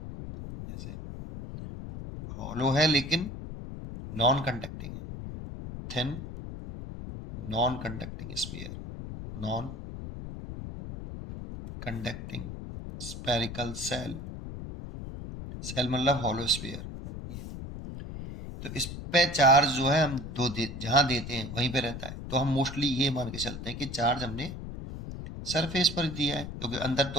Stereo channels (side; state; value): left; noise; rumble, 9 dB below the sound